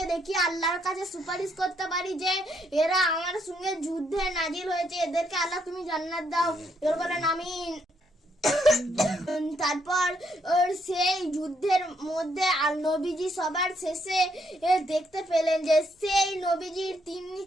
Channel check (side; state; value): both; normal; correlation 0.73